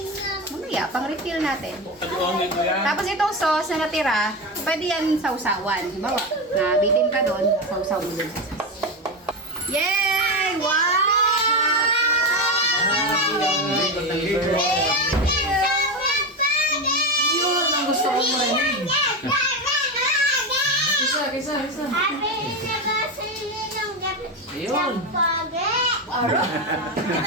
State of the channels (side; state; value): both; normal; correlation 0.16